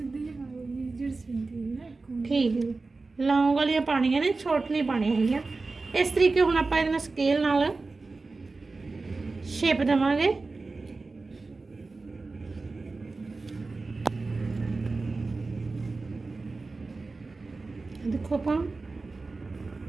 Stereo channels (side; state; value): left; quieter; 3.7 dB